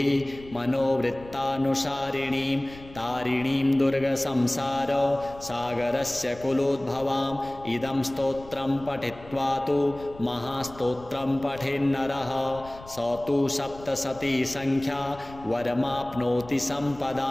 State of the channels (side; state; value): left; noise; rumble, 18 dB below the sound